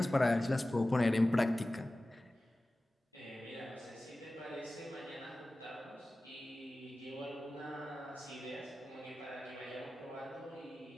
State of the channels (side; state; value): both; normal; correlation 0.96